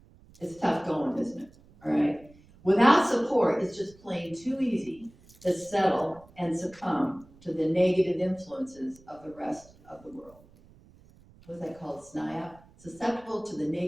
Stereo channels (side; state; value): right; noise; rumble, 26 dB below the sound